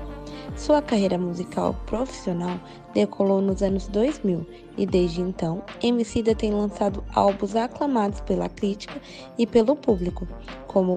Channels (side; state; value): both; identical; correlation 1.00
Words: Sua carreira musical profissional decolou nos anos 2000 e desde então, Emicida tem lançado álbuns aclamados pela crítica e pelo público,